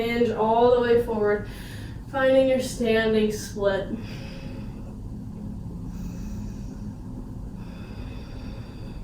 all the way forward. Finding your standing split.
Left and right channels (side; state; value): both; identical; correlation 1.00